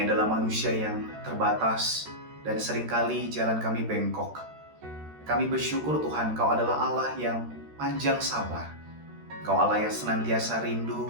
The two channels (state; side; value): late; left; 13 ms